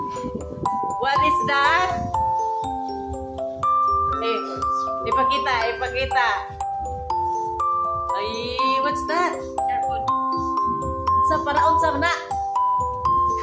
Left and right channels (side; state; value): both; identical; correlation 1.00